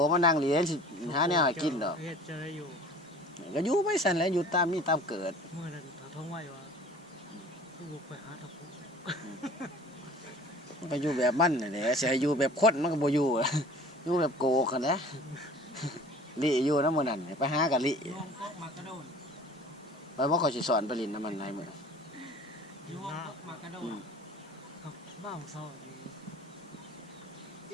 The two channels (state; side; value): normal; both; correlation 0.46